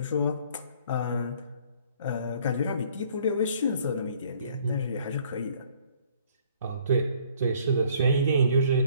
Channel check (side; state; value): both; inverted; correlation -0.58